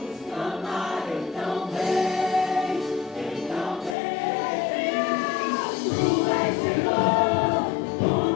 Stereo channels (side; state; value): right; drops out; at 4.0 s